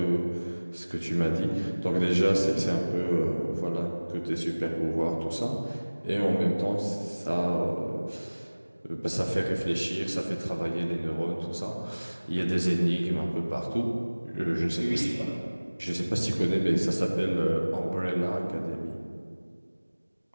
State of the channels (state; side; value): inverted; both; correlation -1.00